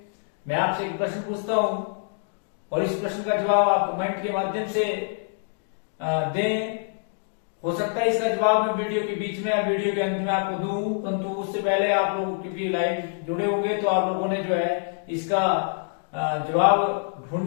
मैं आपसे एक प्रश्न पूछता हूं और इस प्रश्न का जवाब आप कमेंट के माध्यम से दें। हो सकता है इसका जवाब मैं वीडियो के बीच में या वीडियो के अंत में आपको दूं, परंतु उससे पहले आप लोग क्योंकि लाइव जुड़े होंगे तो आप लोगों ने जो है इसका जवाब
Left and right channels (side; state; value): right; silent; digital silence